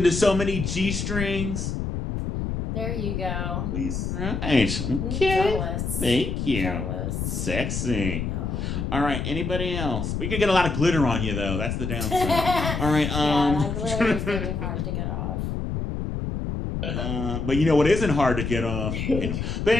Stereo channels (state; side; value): noise; left; rumble, 3 dB below the sound